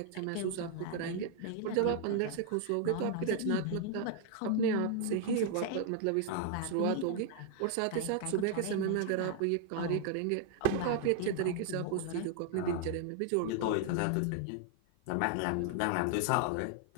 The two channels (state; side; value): different; both; correlation 0.00